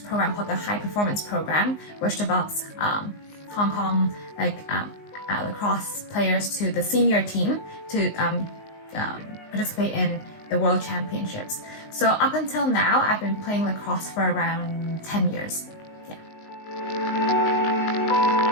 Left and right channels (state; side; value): late; right; 19 ms